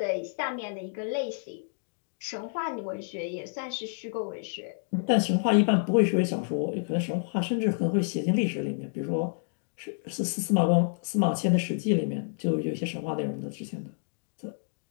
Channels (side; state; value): right; silent; digital silence